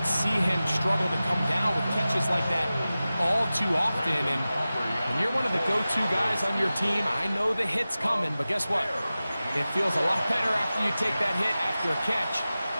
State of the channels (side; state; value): both; inverted; correlation -0.96